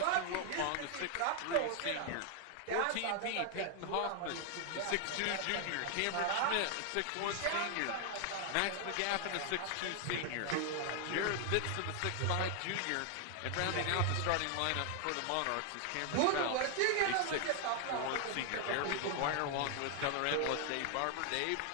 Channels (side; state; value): both; different; correlation 0.00